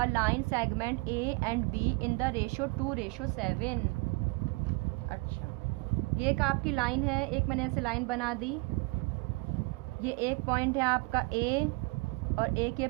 line segment A and B in the ratio 2:7। अच्छा, ये एक आपकी लाइन है, एक मैंने ऐसे लाइन बना दी। ये एक पॉइंट है आपका A और एक ये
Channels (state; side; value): quieter; left; 27.8 dB